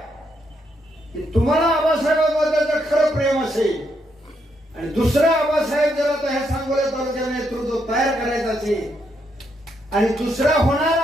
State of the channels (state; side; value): normal; both; correlation 0.77